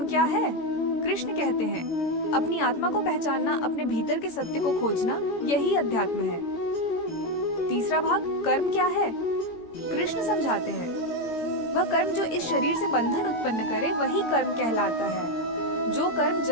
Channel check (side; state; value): right; late; 18 ms